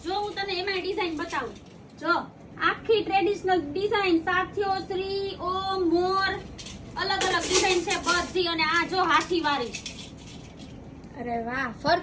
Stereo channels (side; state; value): both; identical; correlation 1.00